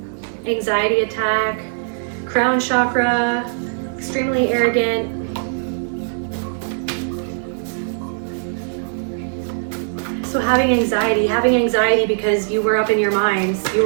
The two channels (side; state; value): left; silent; digital silence